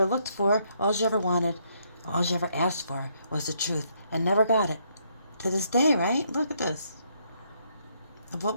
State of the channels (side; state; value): both; inverted; correlation -0.72